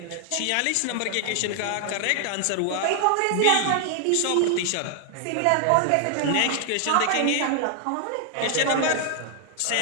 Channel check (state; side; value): different; both; correlation 0.00